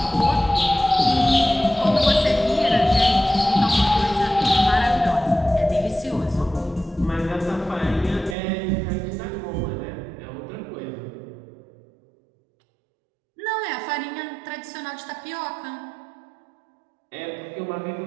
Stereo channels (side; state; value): left; drops out; at 8.3 s